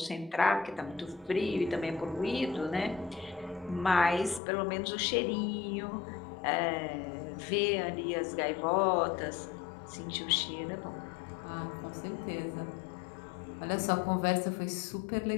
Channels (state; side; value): drops out; right; at 4.4 s